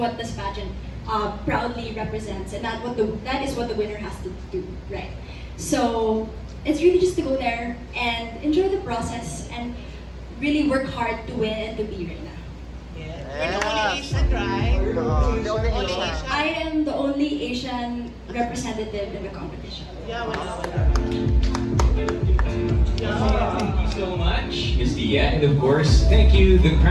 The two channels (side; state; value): both; identical; correlation 1.00